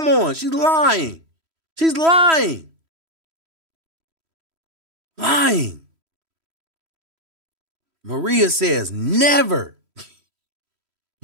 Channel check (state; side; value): late; left; 3.1 ms